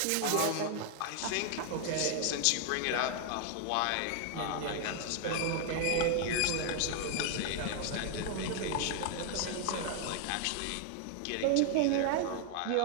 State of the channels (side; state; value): both; different; correlation 0.00